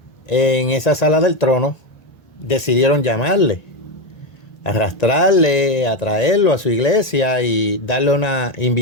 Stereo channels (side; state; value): right; late; 1.4 ms